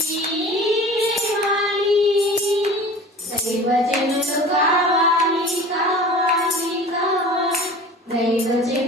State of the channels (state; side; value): normal; both; correlation 0.40